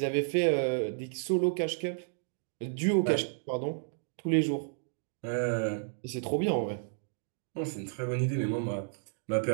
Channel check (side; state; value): left; silent; digital silence